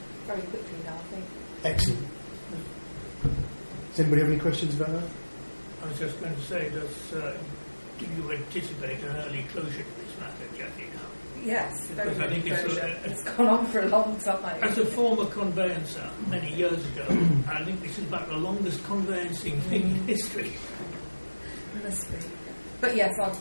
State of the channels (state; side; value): inverted; both; correlation -1.00